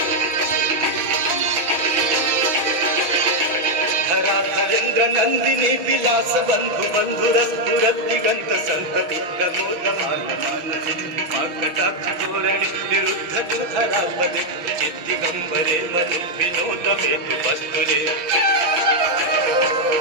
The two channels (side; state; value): left; late; 5.9 ms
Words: धराधरेन्द्र नंदिनी विलास बंधु बंधुरस्फुरद्दिगंत संतति प्रमोदमान कटाक्ष धोरणे निरुद्ध दुधरापदे चित्तिगंबरे मनु विनोद मेतु वस्तुरे